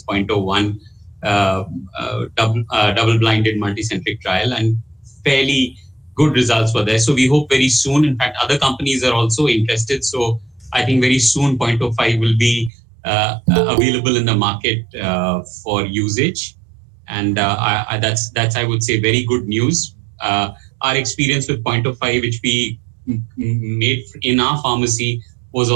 0.01 double-blinded multicentric trial, and fairly good results were there. So we hope very soon. In fact, other companies are also interested. So I think very soon 0.05 will be available in the market for usage, and that's I would say very good news. Our experience with 0.05, which we made in our pharmacy, was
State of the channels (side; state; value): left; drops out; at 12.7 s